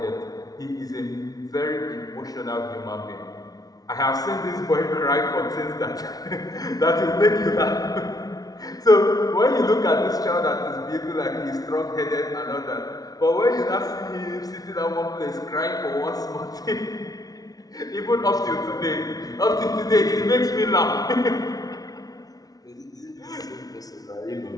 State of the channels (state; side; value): late; right; 0.18 ms